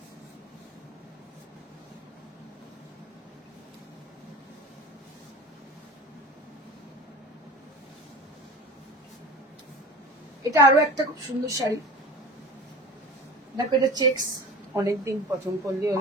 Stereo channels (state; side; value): normal; both; correlation 0.36